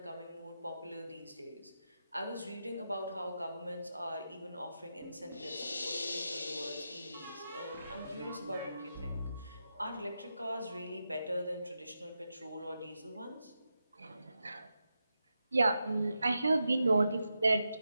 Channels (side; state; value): both; inverted; correlation -0.88